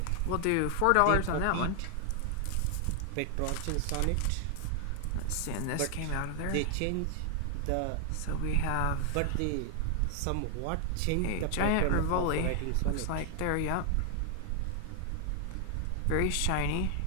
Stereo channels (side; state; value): both; different; correlation 0.00